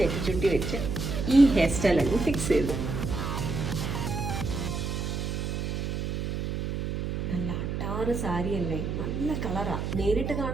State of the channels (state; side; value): noise; right; hum, 2 dB below the sound